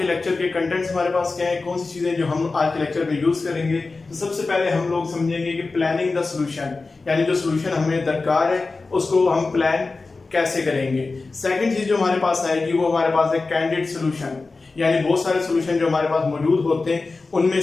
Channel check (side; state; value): right; quieter; 3.8 dB